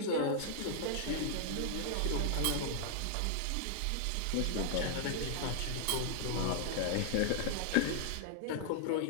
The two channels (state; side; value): different; both; correlation -0.01